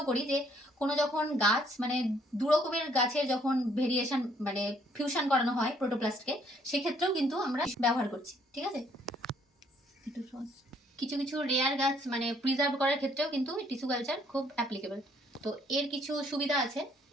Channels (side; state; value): both; normal; correlation 0.65